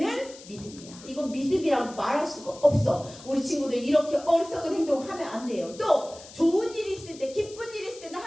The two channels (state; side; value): noise; left; hiss, 18 dB below the sound